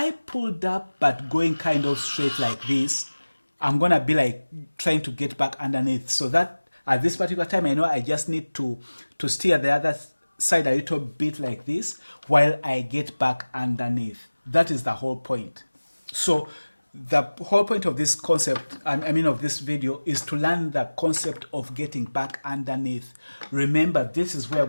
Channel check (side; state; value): both; inverted; correlation -1.00